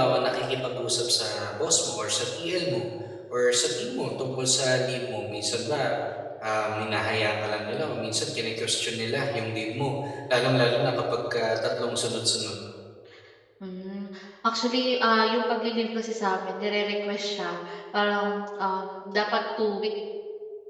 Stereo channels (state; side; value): identical; both; correlation 1.00